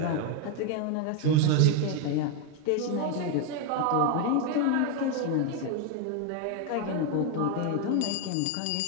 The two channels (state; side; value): different; both; correlation 0.01